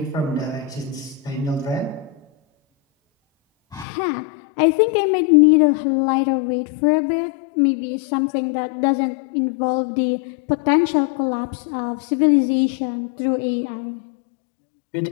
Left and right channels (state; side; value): drops out; right; at 3.9 s